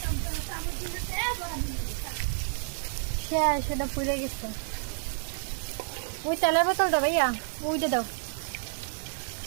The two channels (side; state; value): left; silent; 58 dB below the other